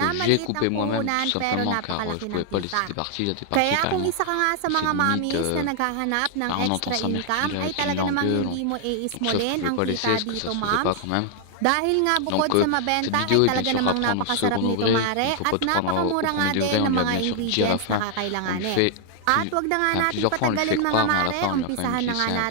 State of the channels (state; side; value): different; both; correlation 0.00